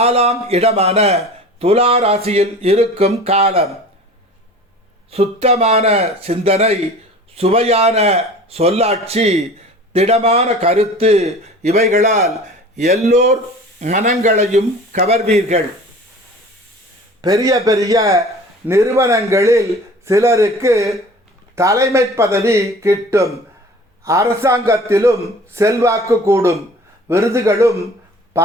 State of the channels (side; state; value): both; normal; correlation 0.43